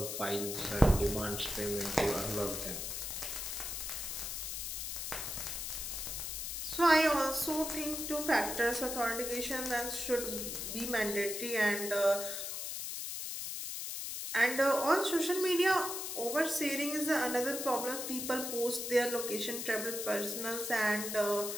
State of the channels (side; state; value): left; noise; hiss, 4 dB below the sound